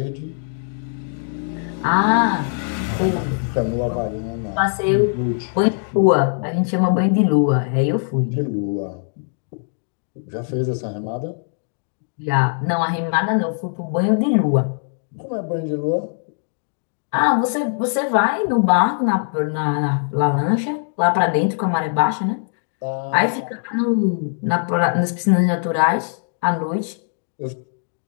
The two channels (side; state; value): right; silent; digital silence